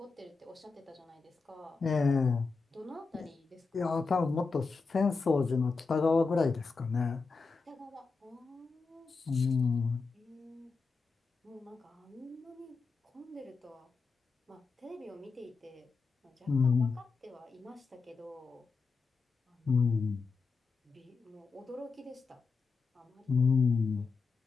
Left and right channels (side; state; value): right; quieter; 4.6 dB